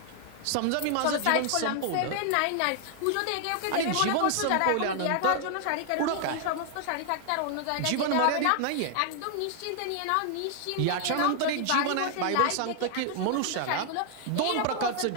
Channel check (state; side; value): different; both; correlation 0.00